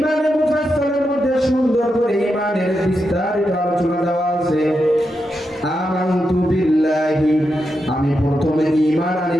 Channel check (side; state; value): both; normal; correlation 0.86